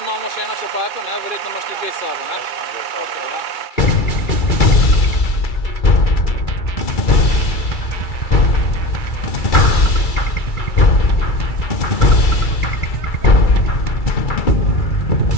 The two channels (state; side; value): late; right; 2.3 ms